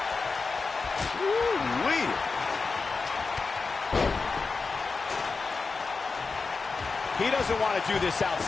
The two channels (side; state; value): right; quieter; 4.4 dB